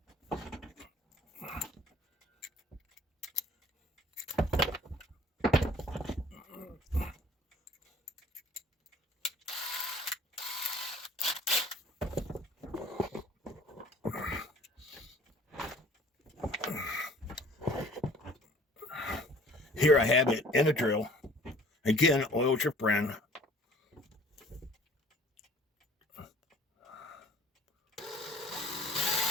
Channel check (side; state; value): both; normal; correlation 0.51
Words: Here I have it in a drill. Again, oil's your friend.